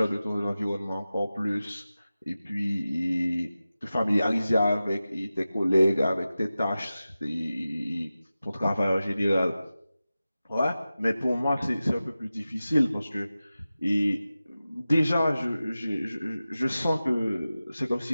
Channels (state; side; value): inverted; both; correlation -0.95